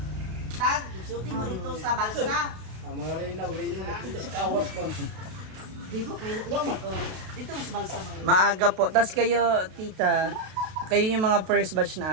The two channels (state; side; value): late; left; 32 ms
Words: tag, shooting mo dito sa balsa. Di ba kay na Dito mo sa balsa mga. maaga po. Tapos kayo, tita, kayo yung mga first batch